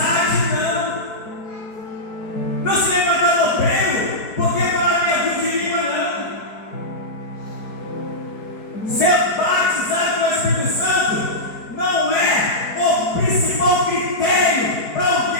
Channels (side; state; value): right; late; 4.6 ms